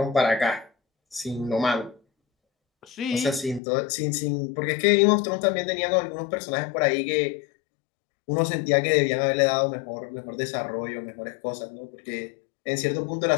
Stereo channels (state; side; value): drops out; right; at 3.6 s